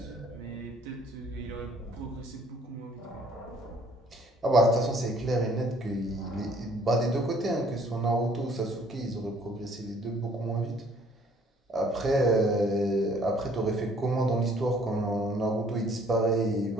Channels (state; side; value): normal; both; correlation 0.59